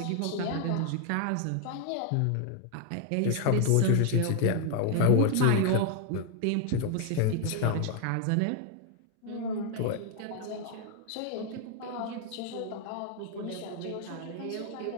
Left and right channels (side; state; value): both; different; correlation 0.00